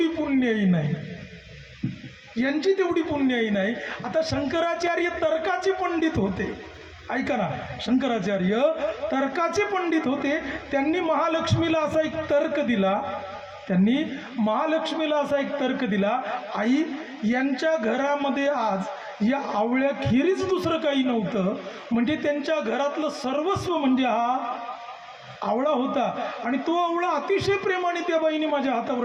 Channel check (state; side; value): identical; both; correlation 1.00